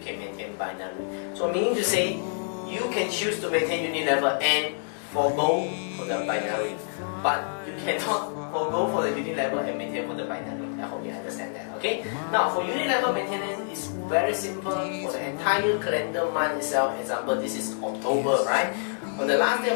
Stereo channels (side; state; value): right; silent; 60 dB below the other